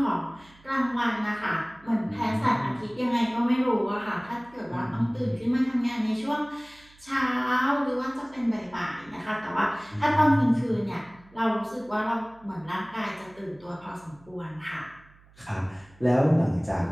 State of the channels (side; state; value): right; noise; hum, 27 dB below the sound